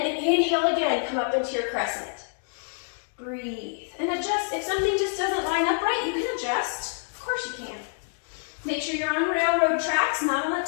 inhale again, come up into your crescent. Breathe, and adjust. If something just doesn't line up right, you can adjust. Of course you can. Make sure you're on railroad tracks, not on a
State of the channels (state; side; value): silent; right; digital silence